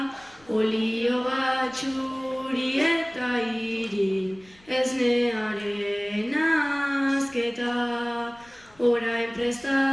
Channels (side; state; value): left; noise; rumble, 28 dB below the sound